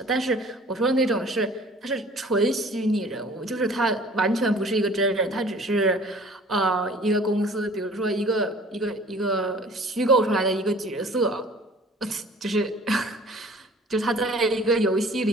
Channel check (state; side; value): normal; both; correlation 0.50